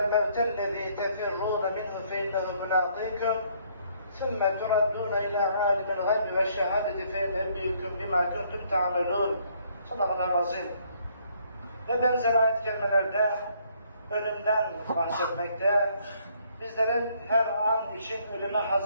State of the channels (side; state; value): both; inverted; correlation -0.66